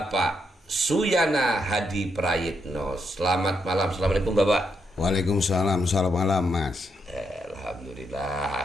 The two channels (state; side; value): normal; both; correlation 0.80